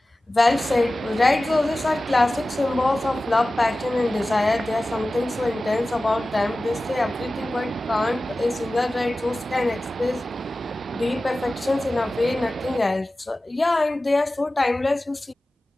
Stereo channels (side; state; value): both; normal; correlation 0.96